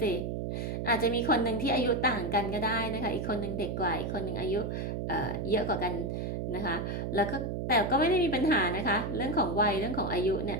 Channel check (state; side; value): noise; right; hum, 3 dB below the sound